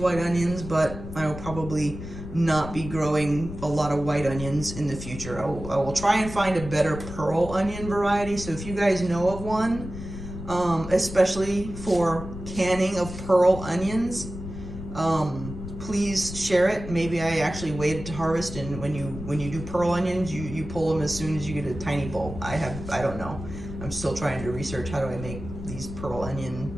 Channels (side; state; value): left; noise; rumble, 10 dB below the sound